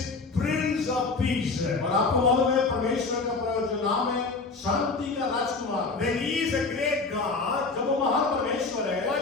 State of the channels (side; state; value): right; quieter; 4.0 dB